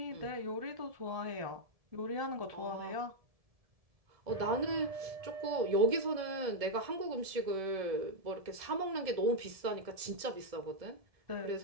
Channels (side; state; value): left; late; 1.7 ms